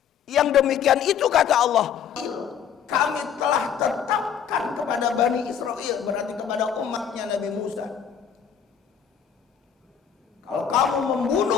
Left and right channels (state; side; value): quieter; right; 8.2 dB